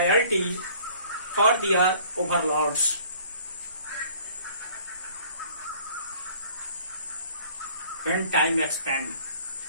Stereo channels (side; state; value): both; inverted; correlation -0.54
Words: for their overlords. When time expanded